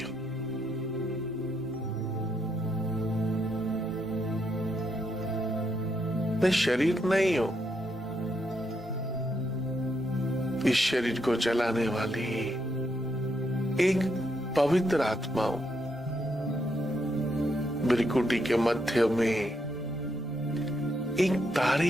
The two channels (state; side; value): normal; both; correlation 0.78